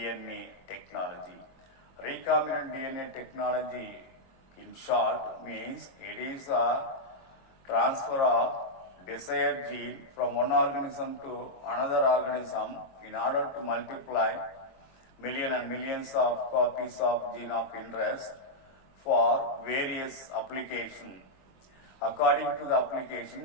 technology. Recombinant DNA technology, in short, means it is a transfer of desired gene from one organism to another organism in order to multiply millions and millions of copies of gene of interest for various applications. According to the application,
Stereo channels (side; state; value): right; late; 22 ms